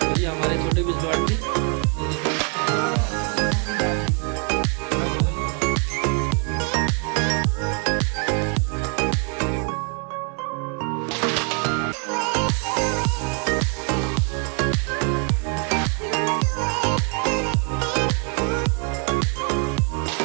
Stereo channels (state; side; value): quieter; left; 38.3 dB